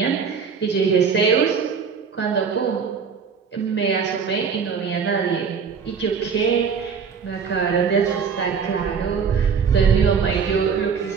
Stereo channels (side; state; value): left; quieter; 6.1 dB